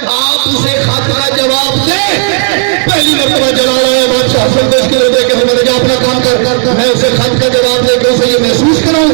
आप उसे खत का जवाब दे। पहली मरतबा जलाल आया बादशाह हसन को इसके लिए देखे, मैंने कहा अपना काम कर, मैं उसे खत का जवाब देकर उसे ये महसूस कराऊं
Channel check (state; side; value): silent; left; 55 dB below the other